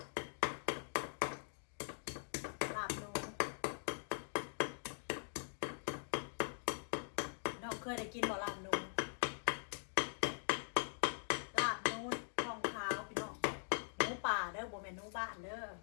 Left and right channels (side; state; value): right; silent; digital silence